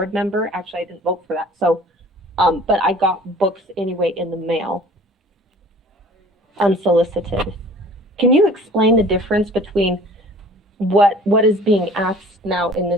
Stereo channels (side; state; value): both; normal; correlation 0.48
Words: member. Actually, I didn't vote for that. So, but I got books anyway in the mail, unsolicited. Can you explain the difference between what is being asked now in